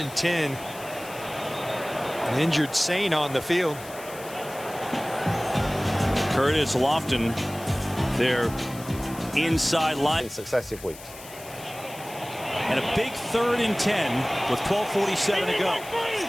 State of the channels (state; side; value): noise; left; hiss, 16 dB below the sound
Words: 10. An injured Saint on the field. Curtis Lofton, their inside line. In successive weeks. And a big 3rd and 10 with 12:47 to go.